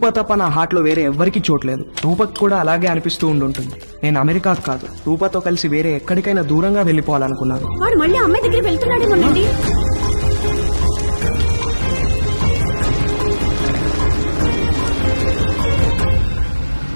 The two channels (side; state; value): both; inverted; correlation -1.00